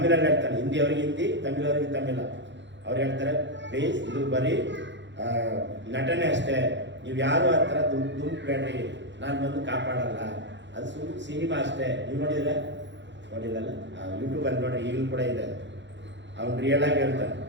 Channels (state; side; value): late; left; 0.53 ms